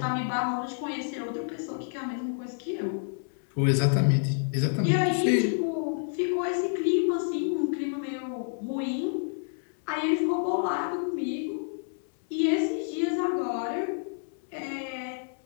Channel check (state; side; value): silent; right; 59 dB below the other